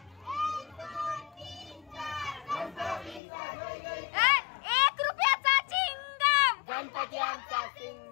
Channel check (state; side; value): drops out; right; at 3.2 s